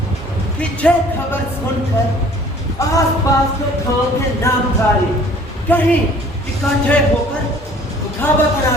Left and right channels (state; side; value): normal; both; correlation 0.52